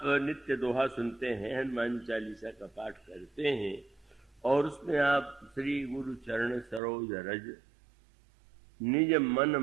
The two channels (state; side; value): drops out; left; at 6.8 s